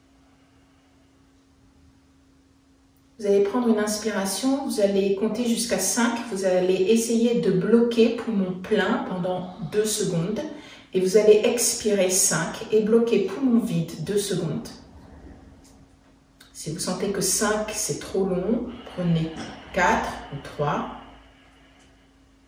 Vous allez prendre une inspiration, vous allez compter jusqu'à 5, vous allez essayer de bloquer poumon plein pendant 2 secondes et vous allez expirer 5 et bloquer poumon vide 2 secondes. Si vous sentez que 5 c'est trop long, prenez 4 ou 3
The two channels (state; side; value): identical; both; correlation 1.00